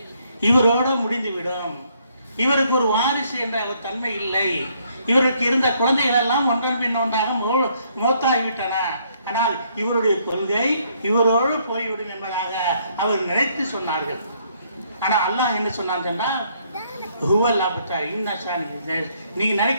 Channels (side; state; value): both; inverted; correlation -0.69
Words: இவரோடு முடிந்துவிடும், இவருக்கு ஒரு வாரிசு என்ற ஒரு தன்மை இல்லை, இவருக்கு இருந்த குழந்தைகள் எல்லாம் ஒன்றன் பின் ஒன்றாக மோத்தாகிவிட்டன, ஆனால் இவருடைய கொள்கை இவரோடு போய்விடும் என்பதாக அவர் நினைத்து சொன்னார்கள். ஆனால் அல்லாஹ் என்ன சொன்னான் சொன்னால், நீங்க